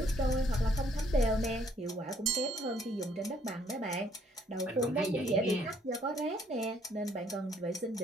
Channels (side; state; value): both; normal; correlation 0.65